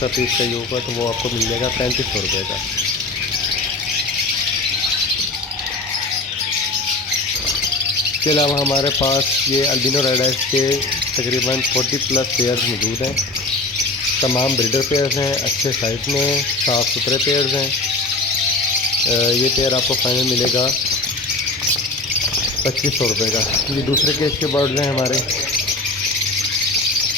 पीस चाहिए होगा तो वो आपको मिल जाएगा 3500 रुपये का। इसके अलावा हमारे पास ये अल्बिनो रेड आइज के तकरीबन 40+ पेयर्स मौजूद हैं। तमाम ब्रीडर पेयर्स हैं, अच्छे साइज़ में, साफ़ सुथरे पेयर्स हैं। ये पेयर आपको फाइनल मिलेगा 2500 रुपये का। ये दूसरे केज के बर्ड्स हैं हमारे,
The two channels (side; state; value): right; quieter; 3.1 dB